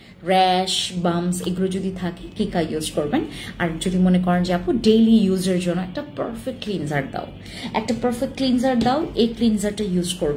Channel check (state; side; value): identical; both; correlation 1.00